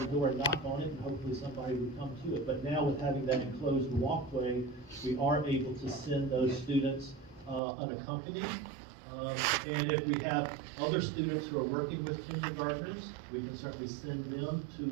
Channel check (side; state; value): left; drops out; at 7.6 s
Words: door and knock on it, and hopefully somebody would come to it. But now with having that enclosed walkway, we are able to send those students unaccompanied. And if we have other students who are working with kindergartners, we can certainly send them to